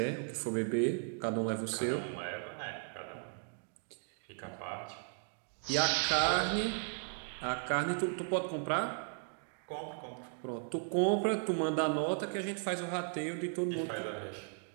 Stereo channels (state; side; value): silent; left; 54 dB below the other